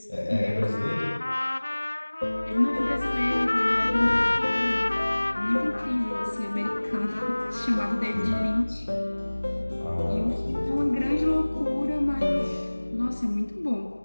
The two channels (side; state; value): both; inverted; correlation -1.00